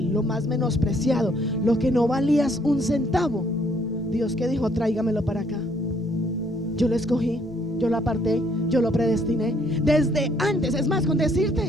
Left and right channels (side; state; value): both; normal; correlation 0.66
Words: lo más menospreciado, lo que no valías un centavo. Dios que dijo, tráigamelo para acá. Yo lo escogí, yo lo aparté, yo lo predestiné desde antes. Es más, con